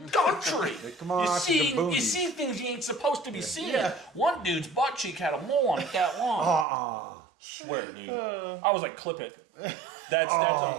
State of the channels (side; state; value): left; drops out; at 6.7 s